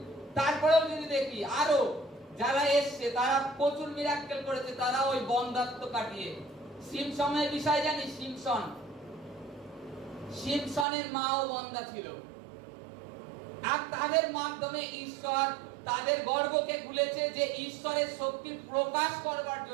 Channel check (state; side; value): drops out; left; at 10.9 s